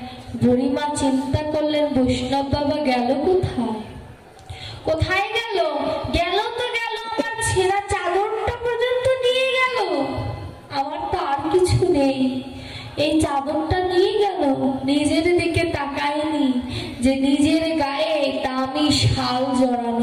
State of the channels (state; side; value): identical; both; correlation 1.00